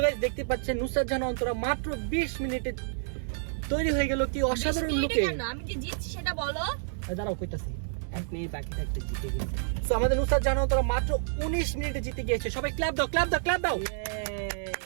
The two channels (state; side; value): silent; left; digital silence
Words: গাইস দেখতে পাচ্ছেন নুসরাত জাহান অন্তরা মাত্র 20 মিনিটে তৈরি হয়ে গেল কি অসাধারণ লুকে আমি যে জিতছি সেটা বলো। দাঁড়াও কইতাছি 1 মিনিট বাকি থাকতে জিতে গেছে। সো আমাদের নুসরাত জাহান অন্তরা মাত্র 19 মিনিটে জিতে গিয়েছে সবাই ক্ল্যাপ দাও ক্ল্যাপ দাও ক্ল্যাপ দাও